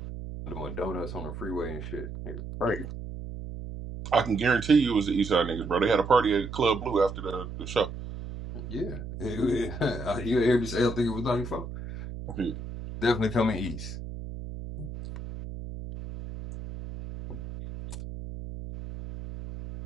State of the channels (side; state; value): right; noise; hum, 9 dB below the sound